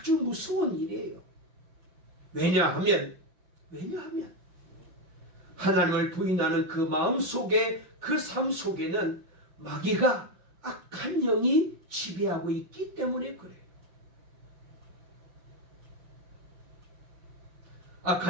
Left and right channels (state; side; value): late; left; 5.7 ms